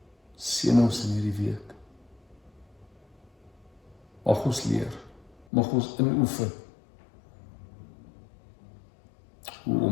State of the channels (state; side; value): drops out; right; at 5.5 s